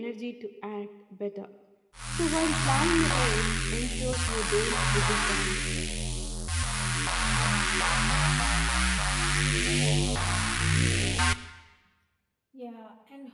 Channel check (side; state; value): both; identical; correlation 1.00